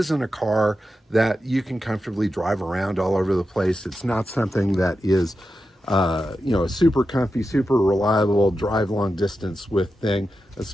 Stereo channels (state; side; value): normal; both; correlation 0.90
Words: a car that you can comfortably drive around all over the place. It's not something that is a super comfy, super reliable drive long distance with thing,